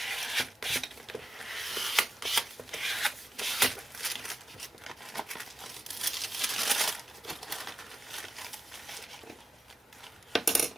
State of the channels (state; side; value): normal; both; correlation 0.93